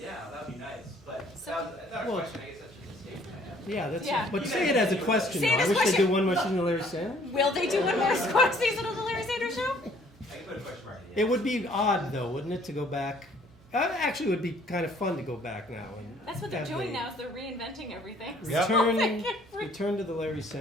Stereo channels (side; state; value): both; normal; correlation 0.59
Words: that'd be nice. But So- that was, I thought Well- a question. I guess that's just a statement I have. Yeah, that's. Yeah. But say it as a question. Say it though. as I a wish they question. do one more season of Larry Sanders. Will they do one more season of the Larry Sanders Show? I can put a question mark at the It end. would be odd, though, wouldn't it, to go back? Actually, it would be kind of fun to go back now. And That's what they're have doing the now. Is they're reinventing everything. Yep. Return to the Larry